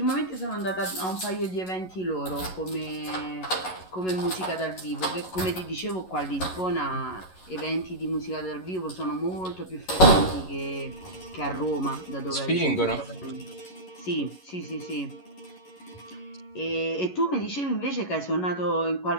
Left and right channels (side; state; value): right; late; 11 ms